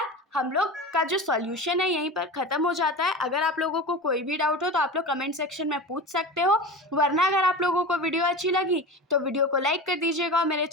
हम लोग का जो सॉल्यूशन है यहीं पर ख़त्म हो जाता है। अगर आप लोगों को कोई भी डाउट हो तो आप लोग कमेंट सेक्शन में पूछ सकते हो, वरना अगर आप लोगों को वीडियो अच्छी लगी तो वीडियो को लाइक कर दीजिएगा और मेरे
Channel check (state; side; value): normal; both; correlation 0.29